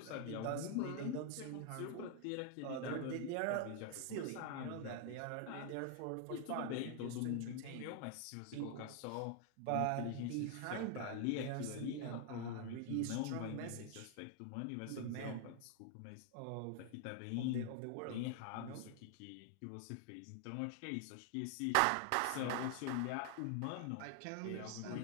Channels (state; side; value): different; both; correlation 0.00